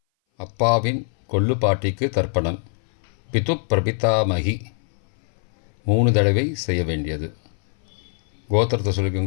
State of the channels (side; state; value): right; silent; 59 dB below the other